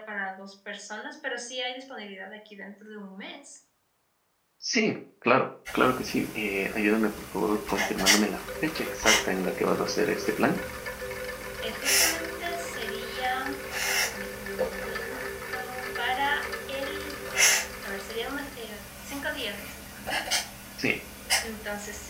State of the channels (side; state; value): both; identical; correlation 1.00